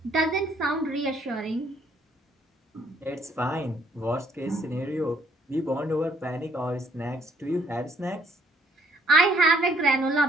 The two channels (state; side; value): normal; both; correlation 0.66